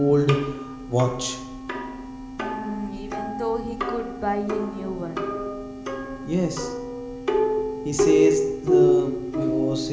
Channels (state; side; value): identical; both; correlation 1.00